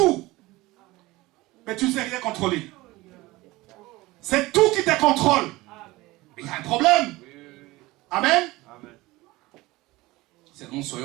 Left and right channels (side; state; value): left; quieter; 20.0 dB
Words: Mais tu ne sais rien contrôler. C'est tout qui te contrôle. Il y a un problème. Amen. Seulement